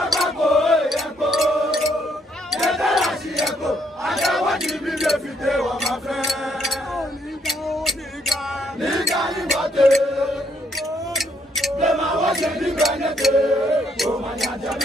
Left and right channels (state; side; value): normal; both; correlation 0.72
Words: ẹyẹkọ yẹtara ṣiyẹkọ adáwọjì mi lè fìdé wọn máa fẹ. Nígbà nígbà tẹ. Lema wọ́ṣẹ̀ nígbà nẹ́tẹ̀. Òmànyàjà